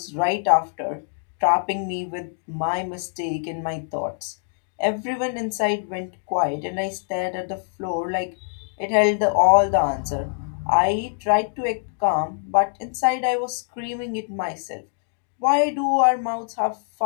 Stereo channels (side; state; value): right; silent; digital silence